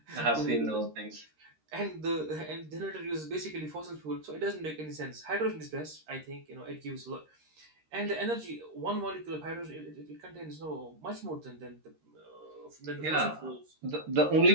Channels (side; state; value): left; late; 13 ms